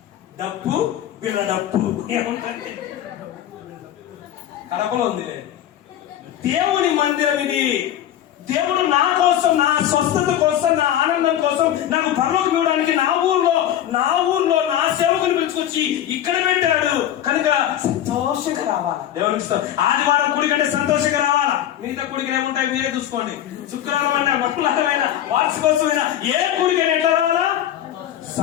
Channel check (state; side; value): quieter; right; 11.4 dB